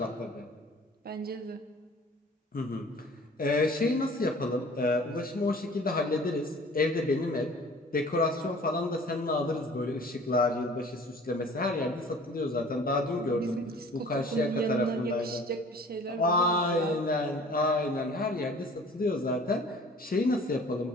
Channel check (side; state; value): both; normal; correlation 0.48